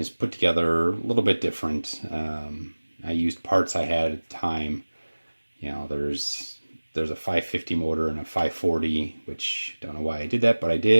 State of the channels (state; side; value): inverted; both; correlation -1.00